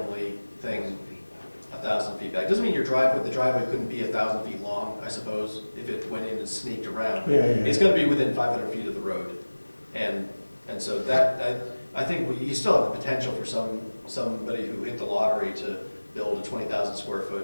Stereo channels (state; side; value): inverted; both; correlation -1.00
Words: thing 1,000 feet back. Doesn't mean the driveway couldn't be 1,000 feet long, I suppose, if it went in and snaked around. Yeah, yeah. It's gonna be within 500 feet of the road. And so that, I think you still have the potential for somebody who hit the lottery to build a 20,000 square